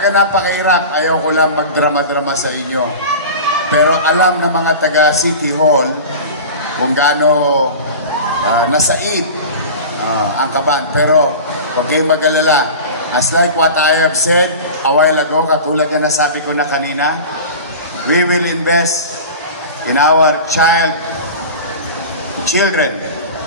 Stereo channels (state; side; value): inverted; both; correlation -0.33